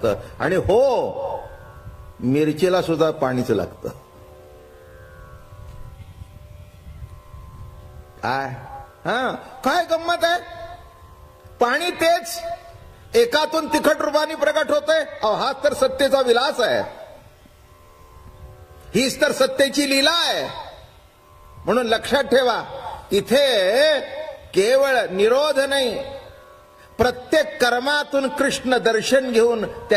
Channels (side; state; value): both; identical; correlation 1.00